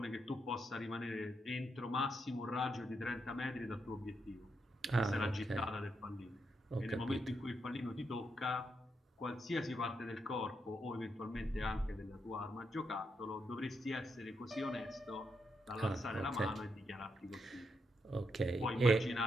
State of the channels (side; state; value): both; normal; correlation 0.81